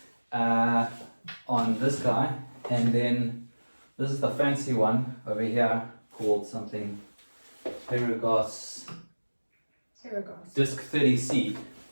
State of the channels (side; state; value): both; inverted; correlation -1.00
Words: on this guy, and then this is the fancy one over here called something Paragas Disc 30C,